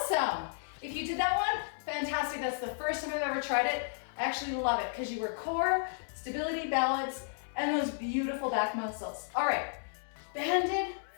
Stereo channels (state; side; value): silent; right; digital silence